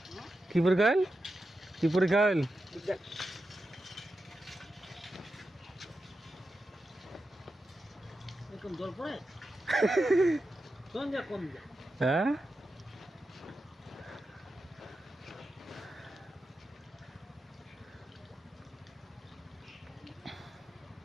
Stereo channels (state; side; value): normal; both; correlation 0.90